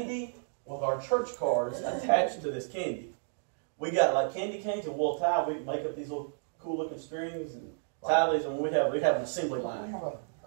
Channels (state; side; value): silent; left; digital silence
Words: with our church cards attached to this candy. We got like candy canes and we'll tie. We make up these little cool looking strings and tie these, and we have an assembly line.